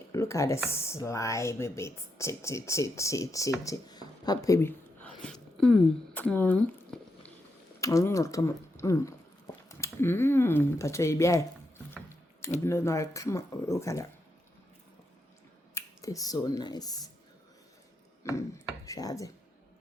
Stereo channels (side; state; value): both; normal; correlation 0.83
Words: look at the slimy bit. Che. Papa, baby. Come on. Pacha, come on. Look at that. It's so nice. Shade.